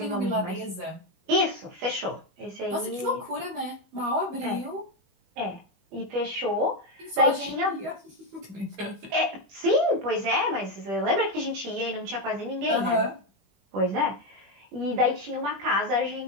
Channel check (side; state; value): left; late; 21 ms